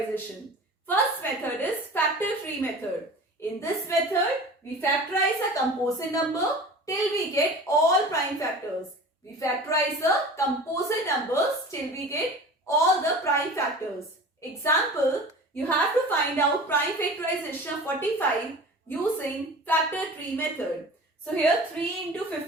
First method is factor tree method. In this method, we factorize a composite number till we get all prime factors. We factorize the composite numbers till we get all the prime factors. Example, you have to find out prime factorization of 45 using factor tree method. So here 3 into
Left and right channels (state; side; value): normal; both; correlation 0.38